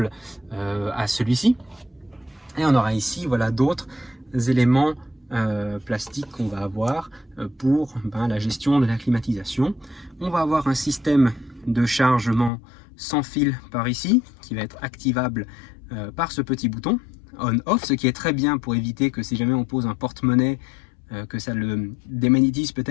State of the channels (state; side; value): drops out; right; at 12.5 s